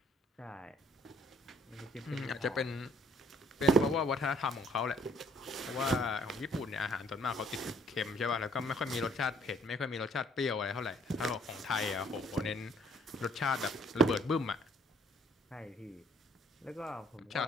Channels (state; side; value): normal; both; correlation 0.63